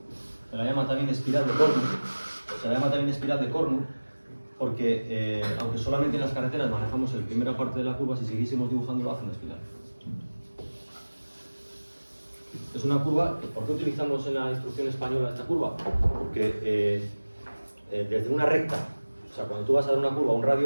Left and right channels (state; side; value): inverted; both; correlation -1.00